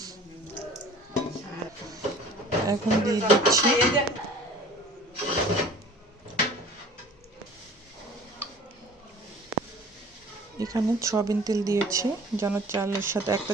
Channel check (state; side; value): normal; both; correlation 0.46